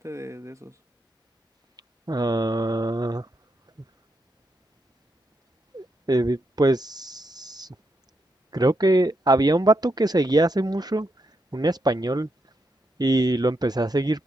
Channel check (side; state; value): both; normal; correlation 0.82